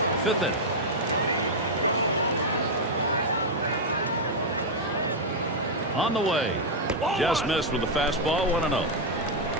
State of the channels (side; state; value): both; normal; correlation -0.01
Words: 5th inning. On the way. Just missed with the fastball, 1-0.